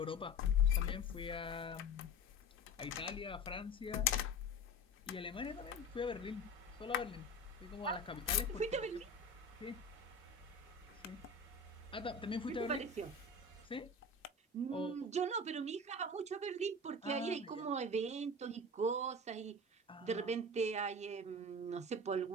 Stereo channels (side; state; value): both; normal; correlation 0.32